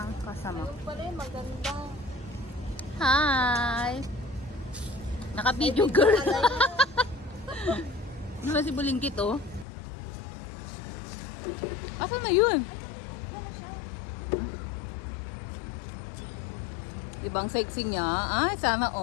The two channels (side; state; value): right; drops out; at 9.7 s